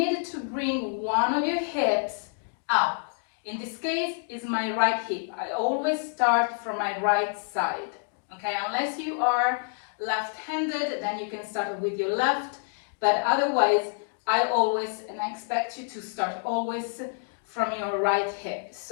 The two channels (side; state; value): right; silent; 60 dB below the other